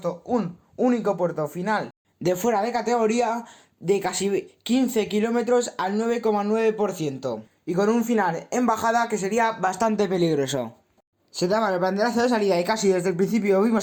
un único puerto final de fuera de categoría de casi 15 kilómetros al 9,9% y con un final en bajada que sería bastante peligroso. Se daba el banderazo de salida y casi desde el principio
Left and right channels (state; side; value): identical; both; correlation 1.00